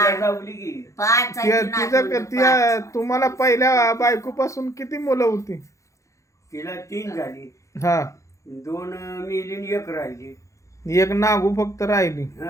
लावली की 5 आहे ती नातुंड, तुम्हाला पहिल्या बायकोपासून किती मुलं होती? तिला 3 झाली, हा, 2 मेली आणि 1 राहिली. एक नागू फक्त राहिली.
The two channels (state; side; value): late; right; 0.15 ms